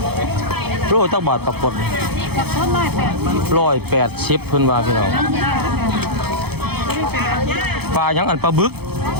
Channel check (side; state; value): left; late; 0.97 ms